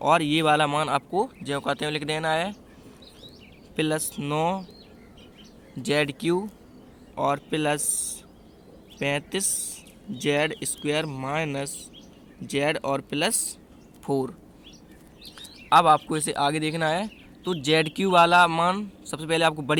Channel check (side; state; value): both; identical; correlation 1.00